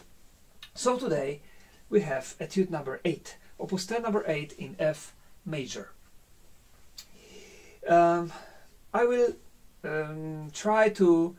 So today we have Etude number 8, Opus 10 number 8 in F major. I will try to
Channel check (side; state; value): both; identical; correlation 1.00